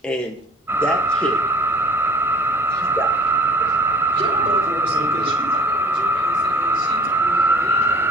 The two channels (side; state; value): both; normal; correlation 0.48